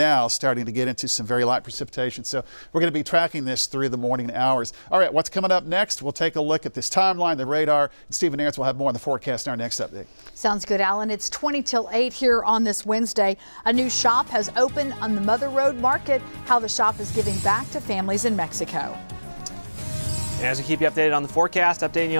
starting to get into some very light precipitation. So we're going to be tracking this through the morning hours. All right, what's coming up next? We'll take a look at this timeline, the radar, and Stephen Aarons will have more on the forecast in our next update. Sounds good, Alan. It's 20 till 8 here on this Wednesday. A new shop has opened on the Mother Road Market. How the shop is giving back to families in Mexico. As we keep you updated on the forecast, updating you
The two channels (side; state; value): both; inverted; correlation -1.00